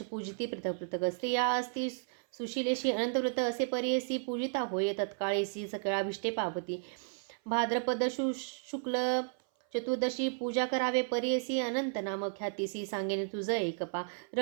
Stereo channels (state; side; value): silent; left; 55 dB below the other